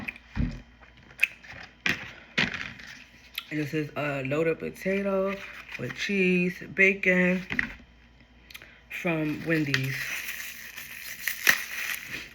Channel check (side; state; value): both; identical; correlation 1.00